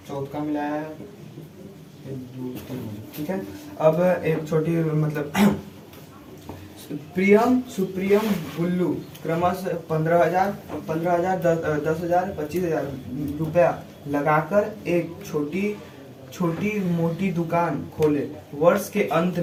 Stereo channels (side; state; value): both; identical; correlation 1.00